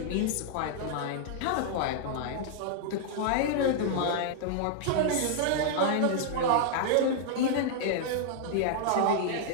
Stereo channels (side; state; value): both; different; correlation -0.01